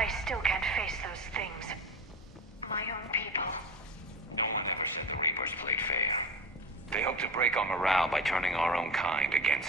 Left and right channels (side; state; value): both; normal; correlation 0.29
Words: still can't face those things. My own people. No one ever said the Reapers played fair. They hope to break our morale by turning our own kind